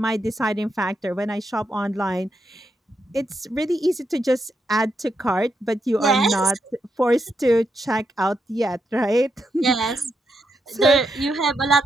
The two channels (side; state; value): both; normal; correlation 0.82